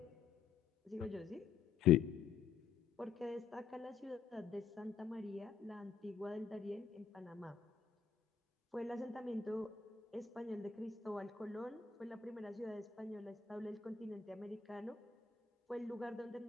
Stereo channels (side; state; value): right; quieter; 6.3 dB